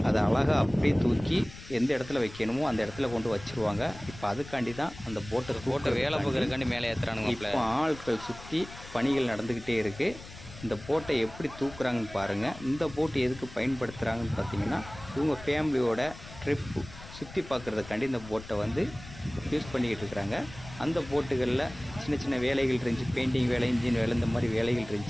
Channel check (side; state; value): left; noise; rumble, 16 dB below the sound